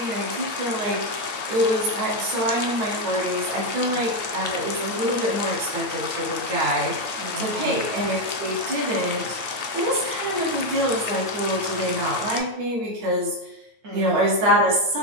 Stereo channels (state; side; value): late; left; 9.1 ms